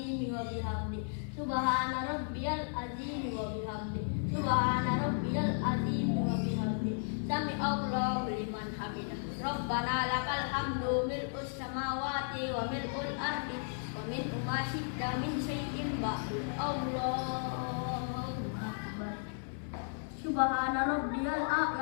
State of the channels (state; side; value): silent; right; 55 dB below the other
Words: wa bihamdi. Subhana rabbiyal azimi wa bihamdi. Subhana rabbiyal azimi wa bihamdi. Sami Allahu liman hamidah. Rabbana lakal hamdu mil'us samawati wa mil'ul ardi wa mil'u ma syi'ta min syai'in ba'du. Allahu akbar. Subhana rabbiyal